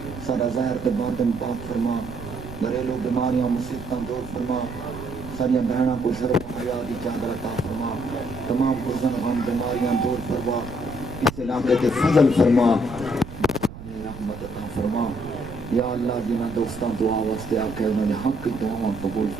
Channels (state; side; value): noise; right; rumble, 13 dB below the sound